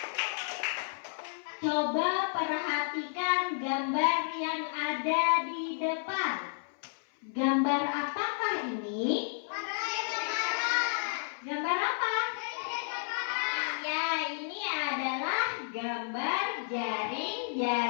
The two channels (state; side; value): silent; right; 57 dB below the other